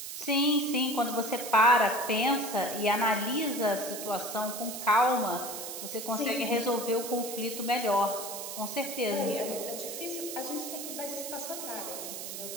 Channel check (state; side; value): noise; right; hiss, 7 dB below the sound